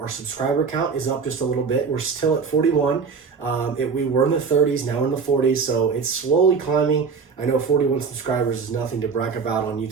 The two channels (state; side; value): quieter; left; 5.4 dB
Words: subscriber count is up just a little bit. We're still at 41. We were in the 30s, now we're in the 40s, so it's slowly climbing. I know 41 subscribers is nothing to brag about on